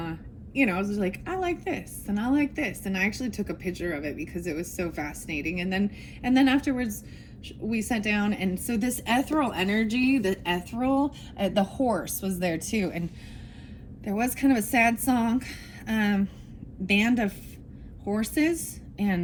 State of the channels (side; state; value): both; identical; correlation 1.00